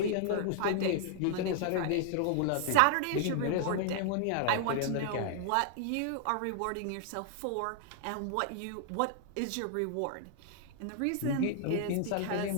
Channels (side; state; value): both; different; correlation 0.00